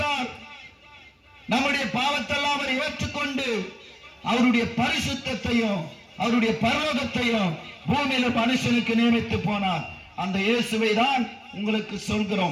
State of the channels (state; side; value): identical; both; correlation 1.00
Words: நம்முடைய பாவத்தெல்லாம் அவர் ஏற்றுக்கொண்டு அவருடைய பரிசுத்தத்தையும் அவருடைய பரலோகத்தையும் பூமியில மனுஷனுக்கு நியமித்து போனார். அந்த இயேசுவை தான் உங்களுக்கு